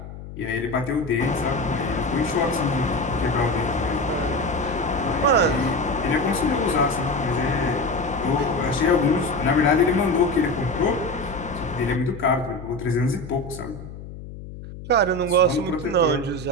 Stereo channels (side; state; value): left; noise; hum, 13 dB below the sound